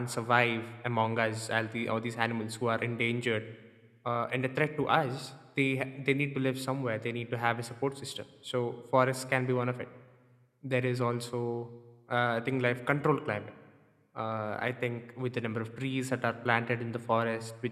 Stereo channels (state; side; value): identical; both; correlation 1.00